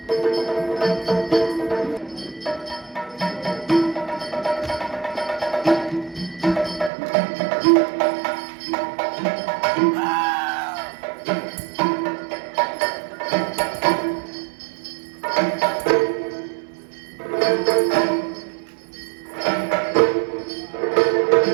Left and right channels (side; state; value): left; drops out; at 6.9 s